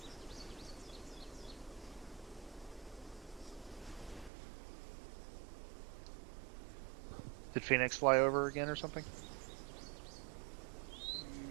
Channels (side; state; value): left; drops out; at 4.3 s